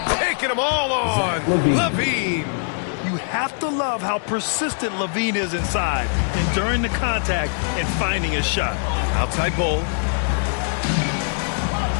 Taking them all on. Levine. You have to love how persistent Levine is inside and during the contact and finding a shot. Outside Bol.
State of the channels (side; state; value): right; silent; digital silence